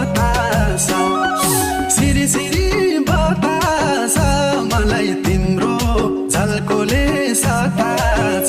सिरी सिरी बतास मलाई तिम्रो झल्कोले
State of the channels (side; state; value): both; identical; correlation 1.00